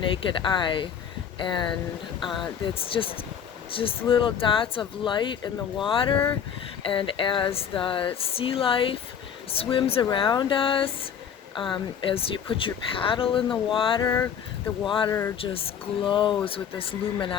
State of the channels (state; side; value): quieter; right; 8.1 dB